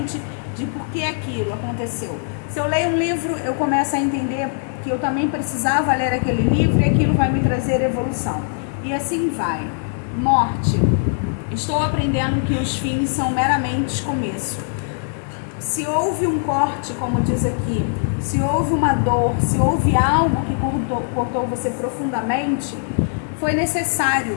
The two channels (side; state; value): right; silent; digital silence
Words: de por que aquilo aconteceu. Se eu leio um livro, eu começo a entender que eu também precisava ler aquele livro e aquilo vai me trazer evolução. E assim vai. Morte. Estou aprendendo que os fins são meramente começo. Se houve um corte, como diz aqui, se houve uma dor, se houve algo que cortou você profundamente, foi